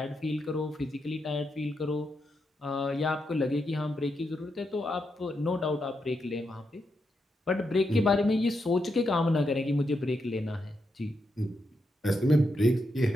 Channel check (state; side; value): normal; both; correlation 0.83